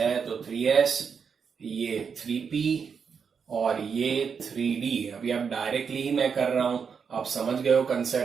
तो 3s, ये 3p और ये 3d। अभी आप डायरेक्टली ही मैं कर रहा हूं, आप समझ गए हो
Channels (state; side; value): quieter; left; 6.3 dB